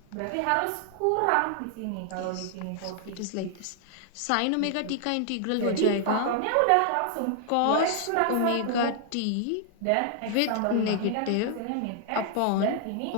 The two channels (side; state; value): both; different; correlation 0.00